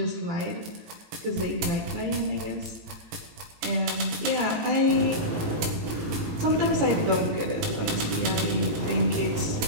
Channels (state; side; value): late; left; 18 ms